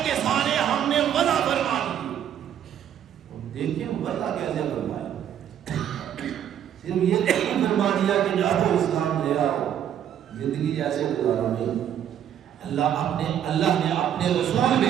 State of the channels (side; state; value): left; quieter; 9.8 dB